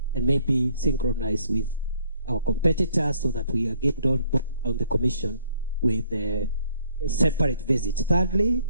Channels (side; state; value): both; inverted; correlation -0.63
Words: and maybe synchronize with our competitors, so that we are getting on the commission with a separate visit. Thirdly,